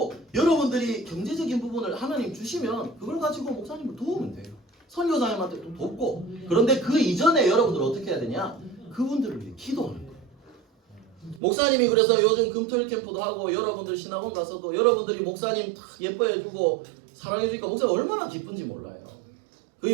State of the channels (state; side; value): drops out; left; at 11.4 s